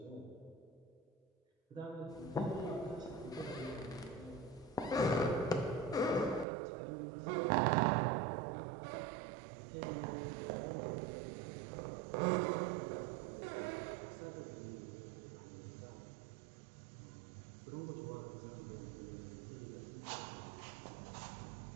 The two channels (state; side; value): drops out; left; at 6.5 s